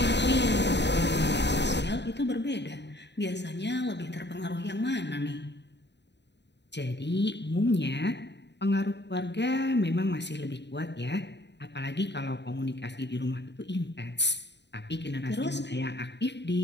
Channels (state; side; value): late; right; 0.50 ms